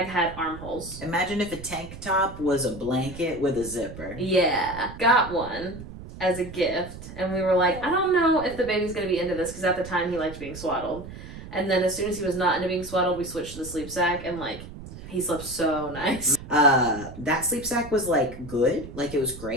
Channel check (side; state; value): right; noise; rumble, 13 dB below the sound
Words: armholes. Imagine if a tank top was a blanket with a zipper. Yeah. Got one as a gift. And we were like, I don't know if the baby's going to be into this, because at the time he liked being swaddled. And then as soon as he was not into being swaddled, we switched to the sleep sack, and like, he slept so nice. That sleep sack was like good. Like it was